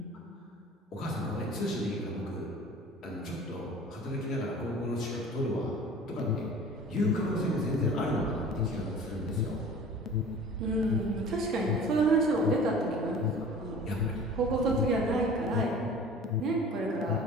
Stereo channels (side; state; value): both; normal; correlation 0.43